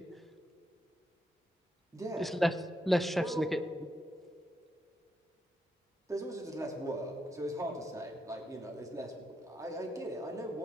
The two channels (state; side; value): normal; both; correlation 0.81